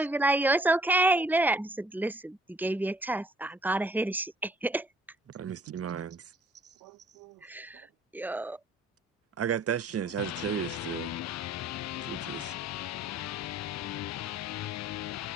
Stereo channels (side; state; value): both; normal; correlation 0.58